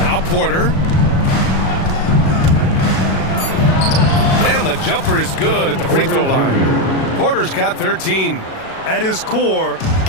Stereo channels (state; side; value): late; right; 37 ms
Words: Porter. And the jumper is good at the free throw line. Porter's got 13. At his core,